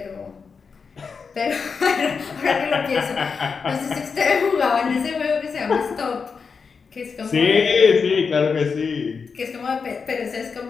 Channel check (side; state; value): right; quieter; 5.4 dB